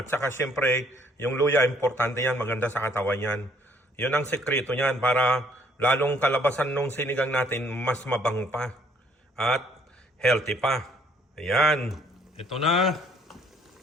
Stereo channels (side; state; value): both; normal; correlation 0.63